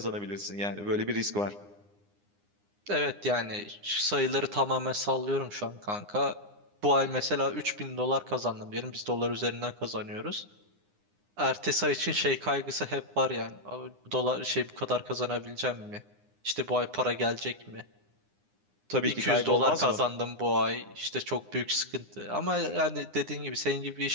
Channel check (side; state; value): left; late; 9.8 ms